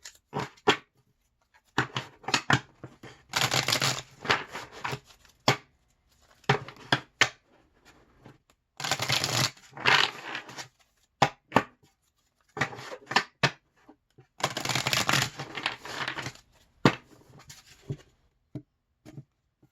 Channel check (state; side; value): identical; both; correlation 1.00